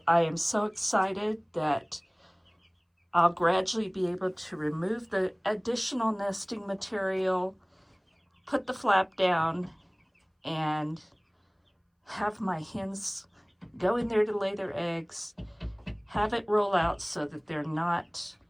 I am so excited that I'll gradually be able to remove the additional nesting material, put the flap down, and have my hens go in there to lay their eggs, have it roll out so that they're not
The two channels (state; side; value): identical; both; correlation 1.00